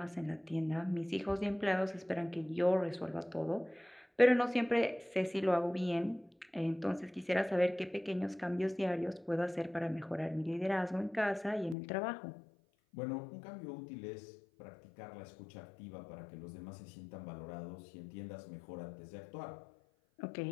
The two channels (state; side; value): drops out; right; at 11.8 s